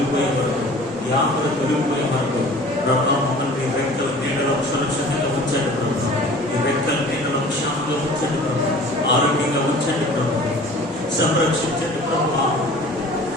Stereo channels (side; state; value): both; normal; correlation 0.46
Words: వరకు, ఈ ఆపద తొలగిపోయే వరకు ప్రభువా, మమ్మల్ని రెక్కల నీడలో సురక్షితంగా ఉంచండి ప్రభు. ఈ రెక్కల నీడలో క్షేమంగా ఉంచండి ప్రభు. ఆరోగ్యంగా ఉంచండి ప్రభు. సంరక్షించండి ప్రభు.